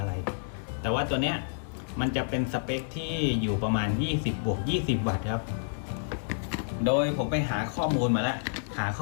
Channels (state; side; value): silent; right; digital silence